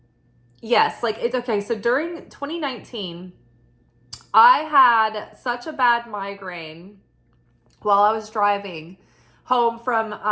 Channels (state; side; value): identical; both; correlation 1.00